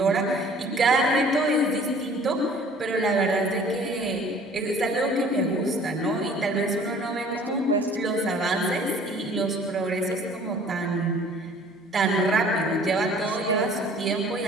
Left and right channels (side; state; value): both; normal; correlation 0.51